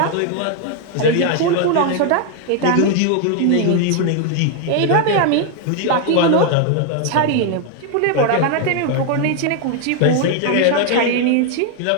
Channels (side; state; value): both; different; correlation 0.00